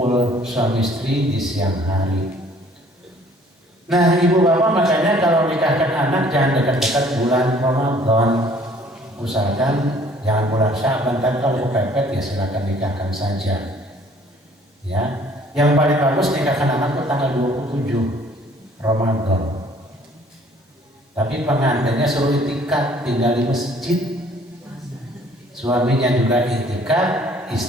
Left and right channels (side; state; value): both; normal; correlation 0.57